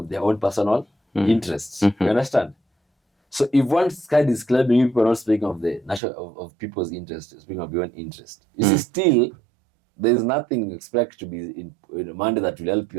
their own personal interests. You understand? So if one side is claiming, people are not speaking of the national of people's interests, speaking of your own interest. You see, still, there is nothing expect to be in Monday that will help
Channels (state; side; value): drops out; left; at 6.0 s